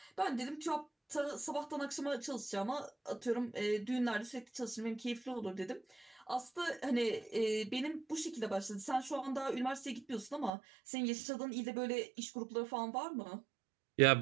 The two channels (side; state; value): left; drops out; at 10.5 s